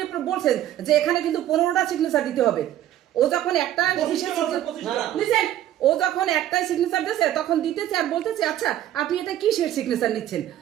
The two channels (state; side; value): quieter; left; 12.3 dB